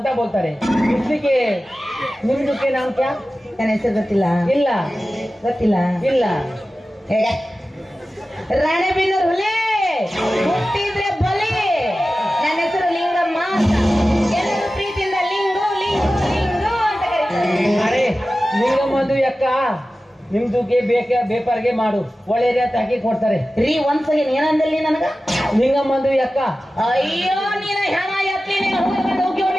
ಬೋಲ್ತಾರೆ. ಇಸ್ಲಿಕ್ಕೆ ನಿಮ್ದಕ್ಕೆ ನಾಮ್ ಕ್ಯಾ? ನನ್ನ ಹೆಸರು ಗೊತ್ತಿಲ್ಲ. ಇಲ್ಲ ಗೊತ್ತಿಲ್ಲ. ಇಲ್ಲ. ಹೇಗ ರಾಣೆಬೆನ್ನೂರು ಹುಲಿ ಹುಟ್ಟಿದ್ರೆ ಬಲಿ. ನನ್ನ ಹೆಸರು ಲಿಂಗಮ್ಮ ಅಂತ. ಎಲ್ಲರೂ ಪ್ರೀತಿಯಿಂದ ಲಿಂಗು ಲಿಂಗು ಲಿಂಗು ಅಂತ ಕರೀತಾರೆ. ಅರೆ ನಿಂಗಮ್ಮಂದು ಅಕ್ಕ ನಿಮ್ದುಗೆ ಬೇಪಾರಿಗೆ ಮಾಡು, ಒಳ್ಳೆ ರೇಟ್ ಹಾಕಿ ಕೊಡ್ತಾರೆ. ರೀ ಒಂದ್ ಸಲ ಏನಂದಲ್ಲಿ ನನಗ? ನಿಂಗಮ್ಮಂದು ಅಕ್ಕ. ಅಯ್ಯೋ ನೀನ ಹೆಣ ಎತ್ತಿ ನೀನು ಹೋಗಿ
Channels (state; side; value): normal; both; correlation 0.95